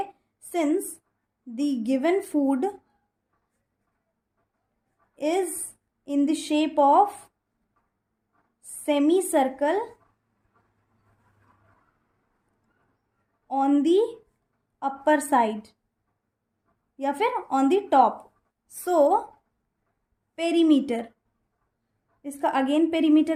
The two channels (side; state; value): both; identical; correlation 1.00